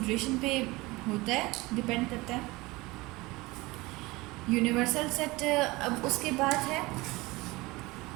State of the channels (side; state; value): left; quieter; 22.0 dB